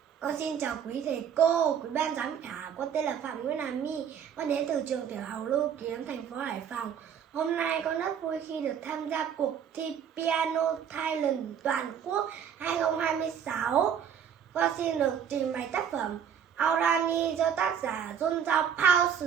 Con xin chào quý thầy cô, quý ban giám khảo. Con tên là Phạm Nguyễn Hà My. Con đến từ trường tiểu học Lưu Kiếm, thành phố Hải Phòng. Hôm nay con rất vui khi được tham gia cuộc thi Piano Talent toàn quốc 2026. Con xin được trình bày tác phẩm Aurani do tác giả John Zhao Pao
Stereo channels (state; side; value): quieter; left; 8.2 dB